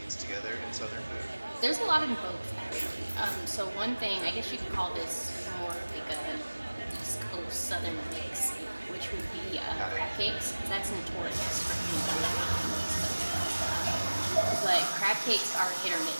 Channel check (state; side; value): inverted; both; correlation -1.00